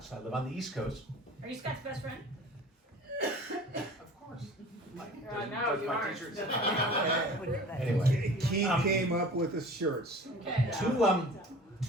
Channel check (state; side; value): normal; both; correlation 0.42